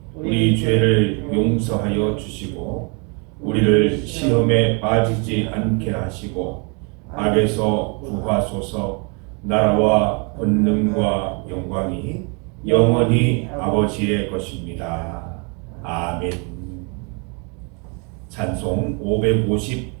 우리 죄를 용서하여 주시고 우리를 시험에 빠지지 않게 하시고 악에서 구하소서. 나라와 권능과 영광이 영원히 아버지의 것입니다. 아멘. 찬송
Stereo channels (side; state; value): left; quieter; 34.5 dB